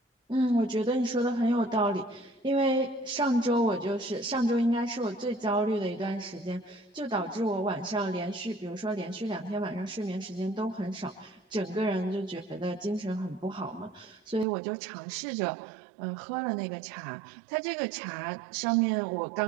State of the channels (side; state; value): left; drops out; at 14.5 s